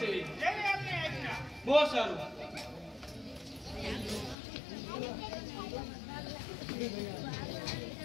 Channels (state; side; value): drops out; right; at 4.4 s